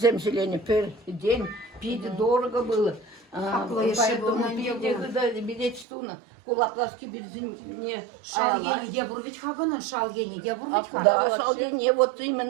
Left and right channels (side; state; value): left; drops out; at 5.9 s